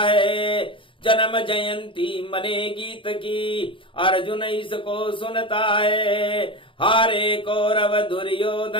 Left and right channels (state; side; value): late; right; 0.25 ms